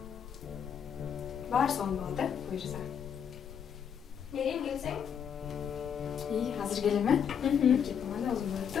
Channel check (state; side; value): quieter; right; 7.9 dB